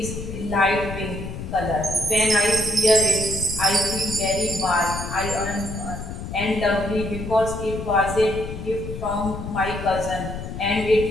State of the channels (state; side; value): noise; left; rumble, 8 dB below the sound